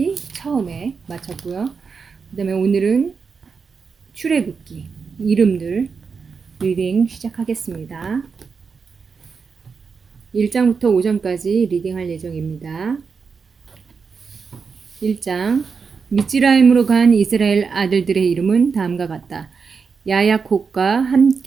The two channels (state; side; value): quieter; left; 5.4 dB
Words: 처음에 마쳤고요. 그 다음에 오늘은 출애굽기 이름들 리딩 시작하겠습니다. 1장부터 5장까지 리딩할 예정입니다. 1장 미츠라임으로 간 이스라엘 아들들의 이름은 다음과 같다. 야야콥과